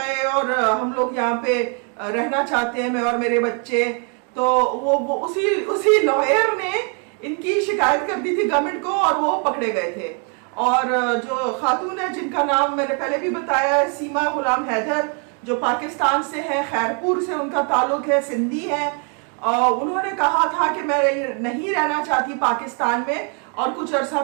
और हम लोग यहाँ पे रहना चाहते हैं, मैं और मेरे बच्चे। तो वो उसी लॉयर ने इनकी शिकायत कर दी थी गवर्नमेंट को और वो पकड़े गए थे। और जो खातून है जिनका नाम मैंने पहले भी बताया है, सीमा गुलाम हैदर, जो पाकिस्तान से है, खैरपुर से उनका ताल्लुक है, सिंधी है। उन्होंने कहा था कि मैं नहीं रहना चाहती पाकिस्तान में। और कुछ अर्सा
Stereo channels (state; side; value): quieter; left; 39.2 dB